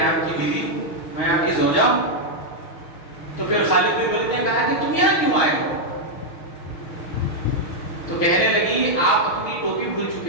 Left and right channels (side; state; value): right; late; 6.0 ms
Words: آپ کی بیوی ہوں، میں آپ کی زوجہ ہوں. تو پھر خالد بن ولید نے کہا کہ تم یہاں کیوں آئے ہو؟ تو کہنے لگی آپ اپنی ٹوپی بھول